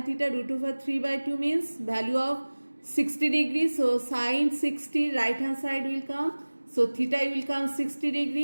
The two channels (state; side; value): inverted; both; correlation -1.00